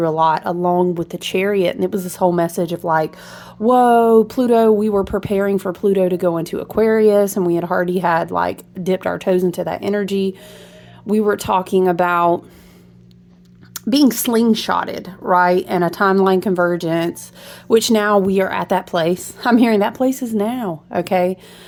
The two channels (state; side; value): identical; both; correlation 1.00